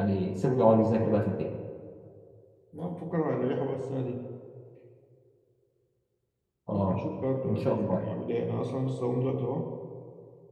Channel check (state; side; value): identical; both; correlation 1.00